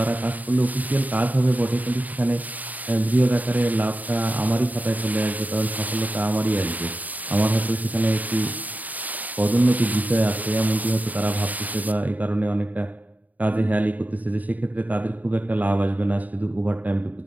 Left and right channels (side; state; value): left; late; 0.078 ms